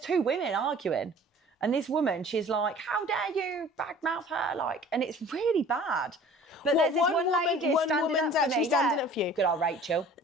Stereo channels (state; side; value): normal; both; correlation 0.47